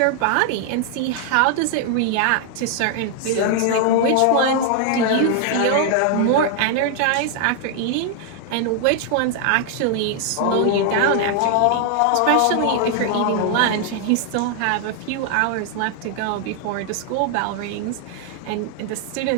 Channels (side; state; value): both; different; correlation 0.00